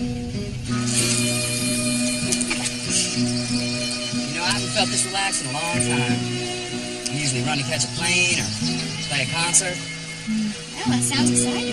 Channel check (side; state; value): both; identical; correlation 1.00